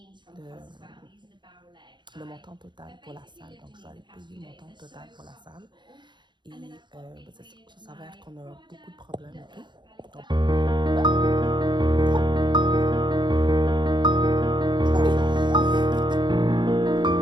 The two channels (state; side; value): late; left; 0.22 ms